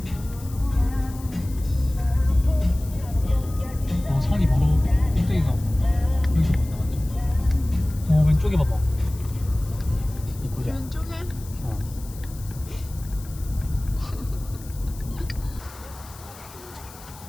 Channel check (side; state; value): left; noise; hiss, 19 dB below the sound